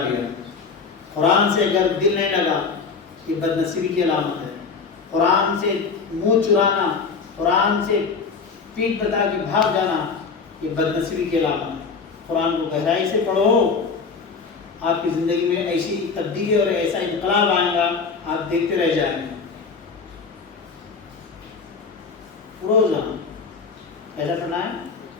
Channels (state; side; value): quieter; right; 5.1 dB